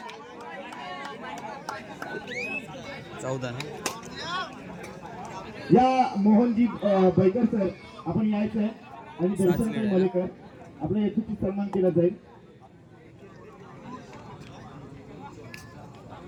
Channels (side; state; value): both; identical; correlation 1.00